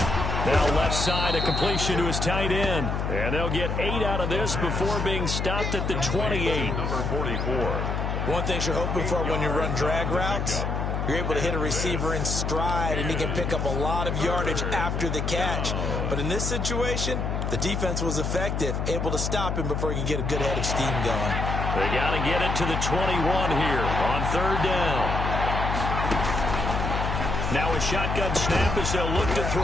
Now left side, a completion to his tight end. And they'll get 8 out of this before being stopped at the 28. Number 44. One thing you're hoping for when you run drag routes, you're able to hit a receiver in stride, and he can pick up a lot of yardage after the catch. But in this situation, the defense was effective, able to stop him before he could get a good head of steam going. They got to get it to the 21 here on third down. Now a shotgun snap as they'll look to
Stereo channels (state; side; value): noise; left; hum, 1 dB below the sound